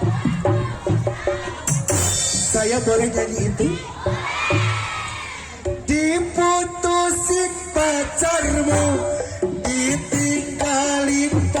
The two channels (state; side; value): identical; both; correlation 1.00